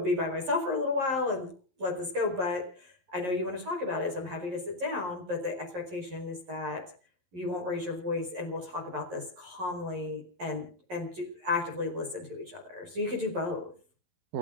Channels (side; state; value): left; late; 11 ms